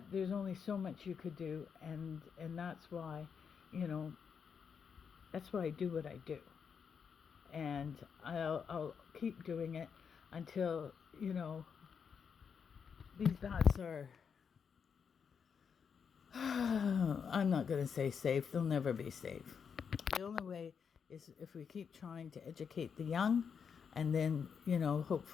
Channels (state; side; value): quieter; right; 6.6 dB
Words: there's only so much you could do, and that's why, that's why I do what I do. And I'll keep doing it until, these bats are, I'm not going to say safe. They'll never be safe. The only way is if we keep trying to educate the young, and then,